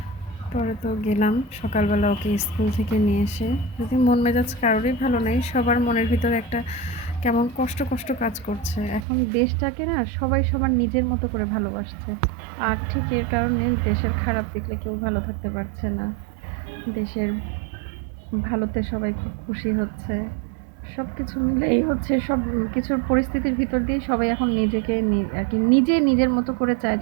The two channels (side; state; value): left; drops out; at 9.1 s